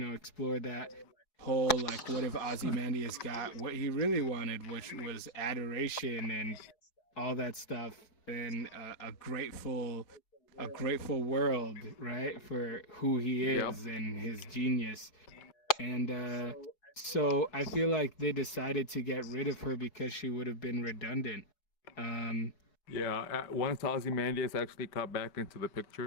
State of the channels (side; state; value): right; late; 4.7 ms